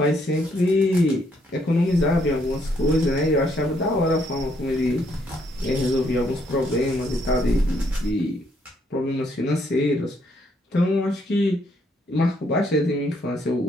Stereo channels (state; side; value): normal; both; correlation 0.71